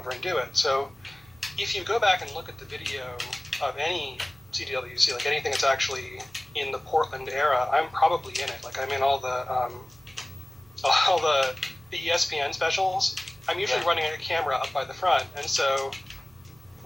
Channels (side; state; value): right; noise; rumble, 29 dB below the sound